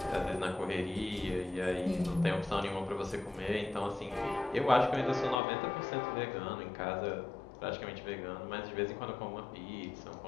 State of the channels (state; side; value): drops out; right; at 5.4 s